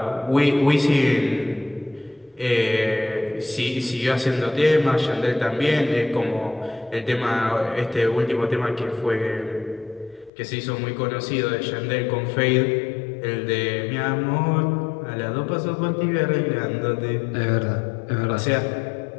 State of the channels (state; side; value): drops out; right; at 10.3 s